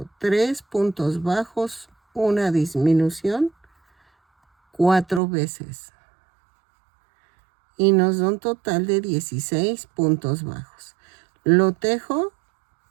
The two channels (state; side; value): drops out; left; at 5.2 s